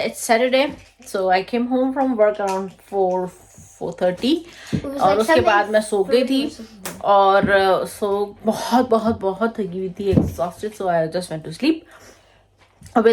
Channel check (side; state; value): both; identical; correlation 1.00